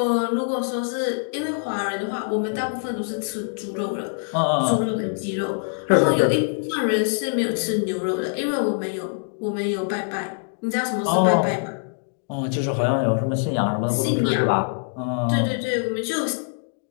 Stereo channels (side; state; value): right; silent; digital silence